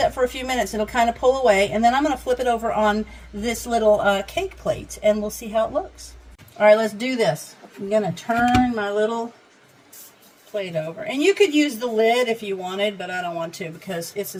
for a few minutes. It'll kind of pull away, and then I'm going to flip it over on this little cake plate, and we'll see how it looks. All right, let's do this. I'm going to turn my little plate over. And you could use the lid if you wanted, but I don't want to because this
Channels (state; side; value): identical; both; correlation 1.00